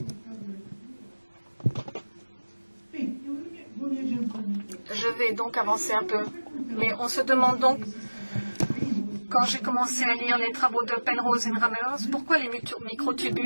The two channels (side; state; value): both; inverted; correlation -1.00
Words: Je vais donc avancer un peu. Mais on se demande donc, quand j'ai commencé à lire les travaux de Penrose et Ramelow, pourquoi les